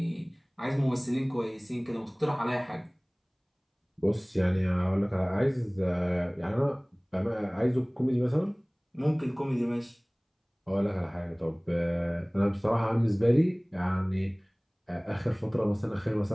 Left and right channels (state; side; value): identical; both; correlation 1.00